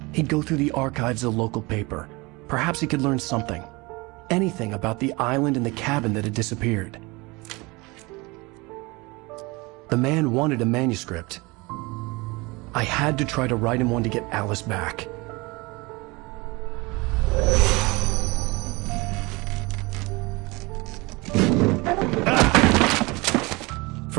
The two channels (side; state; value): left; quieter; 24.7 dB